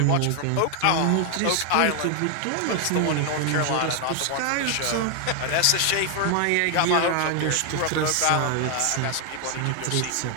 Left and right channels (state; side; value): different; both; correlation 0.00